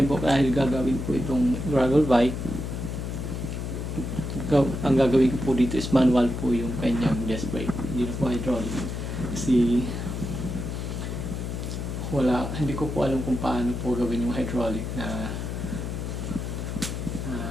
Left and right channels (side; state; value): left; noise; hum, 4 dB below the sound